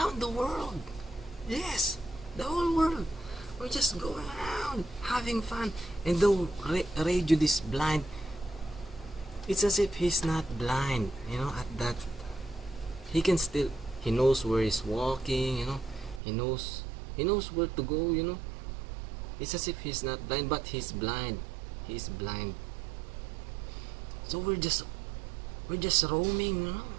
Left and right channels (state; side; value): drops out; left; at 16.2 s